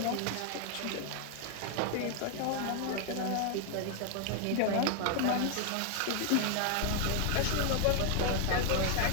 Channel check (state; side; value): different; both; correlation 0.01